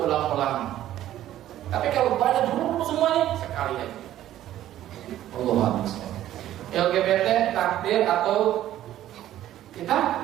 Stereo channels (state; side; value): quieter; left; 12.9 dB